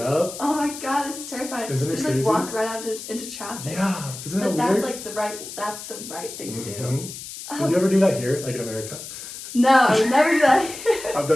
oh my god, this is terrifying. Isn't it just crazy? like walk right out into traffic. Yeah, isn't that But weird? that's like the right thing to do. Did you ever do that here, like in America? No, I would never do that. I've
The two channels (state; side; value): noise; left; hiss, 11 dB below the sound